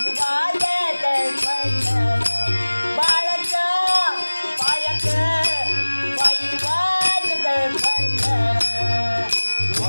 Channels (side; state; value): both; inverted; correlation -1.00